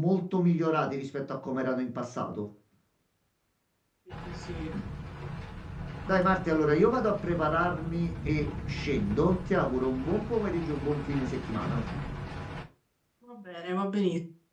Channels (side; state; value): both; identical; correlation 1.00